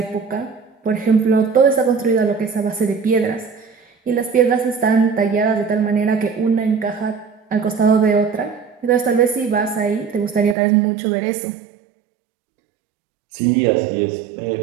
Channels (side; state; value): left; drops out; at 10.6 s